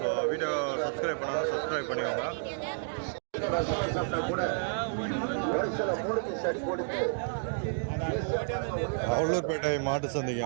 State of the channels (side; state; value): left; silent; digital silence